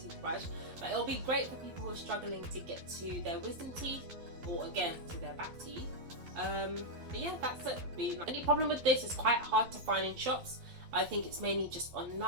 toothbrush, but it'll be great for people who are struggling to get to their wisdom teeth, or again to their back teeth. But yeah, that's it. The only problem with this is quite hard to find in shops. I think it's mainly just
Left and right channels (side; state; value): left; late; 12 ms